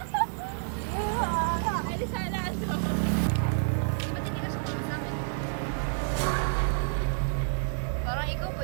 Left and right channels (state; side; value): silent; left; digital silence